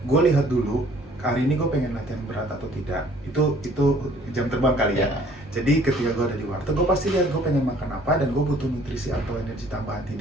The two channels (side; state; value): both; normal; correlation 0.57